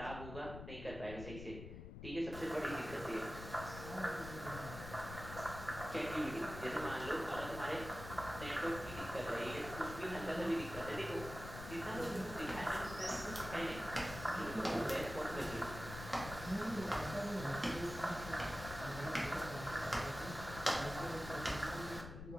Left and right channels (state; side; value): noise; left; rumble, 10 dB below the sound